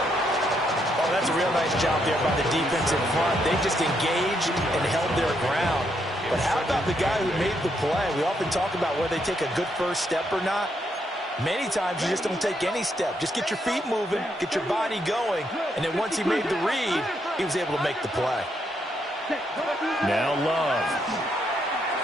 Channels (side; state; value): both; normal; correlation 0.76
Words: Oh, that's a real nice job there by the defensive front. They just engaged and held their ground. But how about the guy who made the play? We often talk about whether they take a good first step or not. Many times you just don't take any step. Just get your feet moving, get your body going, and then once he made the read, he was able to make the play. Now Love.